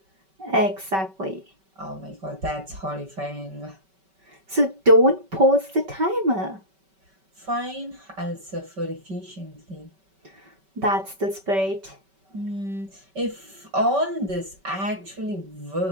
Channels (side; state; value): left; late; 5.2 ms